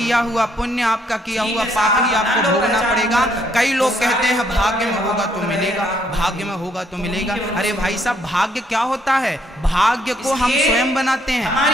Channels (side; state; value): both; normal; correlation 0.70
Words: हुआ पुण्य, आपका किया हुआ पाप ही आपको भोगना पड़ेगा। कई लोग कहते हैं भाग्य में होगा तो मिलेगा, भाग्य में होगा तो मिलेगा। अरे भाई साहब, भाग्य क्या होता है? भाग्य को हम स्वयं बनाते